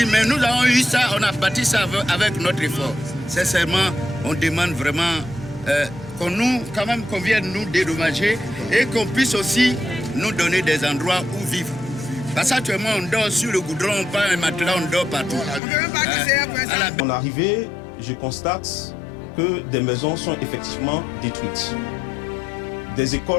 mais nous avons eu ça, on a bâti ça avec notre effort. Sincèrement, on demande vraiment qu'on vienne nous dédommager et qu'on puisse aussi nous donner des endroits où vivre. Parce qu'actuellement, on dort sur le goudron, on prend un matelas, on dort partout. En arrivée, je constate que des maisons sont effectivement détruites. Des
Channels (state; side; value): drops out; right; at 15.6 s